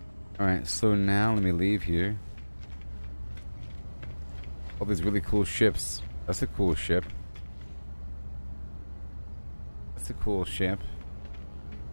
Alright, so now let me leave here. All these really cool ships. That's a cool ship. That's a cool ship.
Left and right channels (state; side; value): inverted; both; correlation -1.00